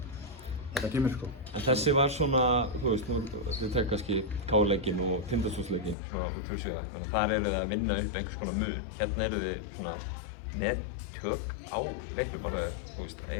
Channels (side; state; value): right; drops out; at 6.0 s